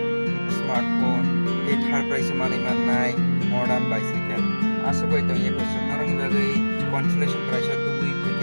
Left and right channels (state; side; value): inverted; both; correlation -1.00